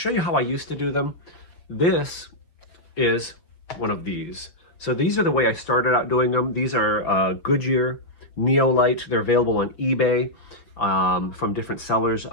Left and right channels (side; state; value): right; late; 6.0 ms